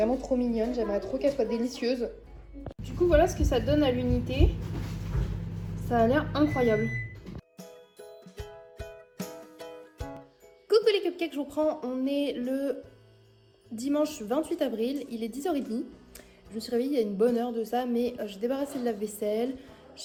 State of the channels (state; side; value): identical; both; correlation 1.00